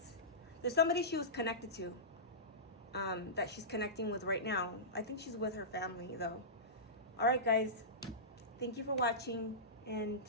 There's somebody she was connected to that she's connecting with right now. I think she's with her family, though. All right, guys. Thank you for watching, and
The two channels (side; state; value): both; normal; correlation -0.19